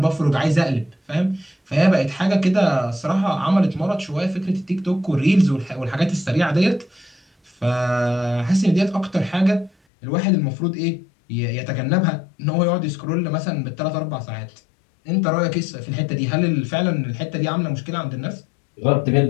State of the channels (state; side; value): drops out; right; at 9.7 s